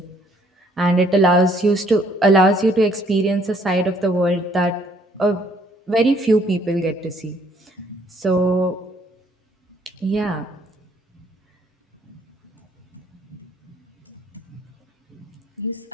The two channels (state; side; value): normal; both; correlation 0.64